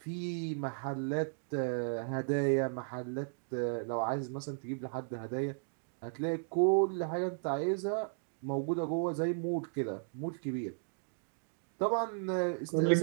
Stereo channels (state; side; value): silent; left; digital silence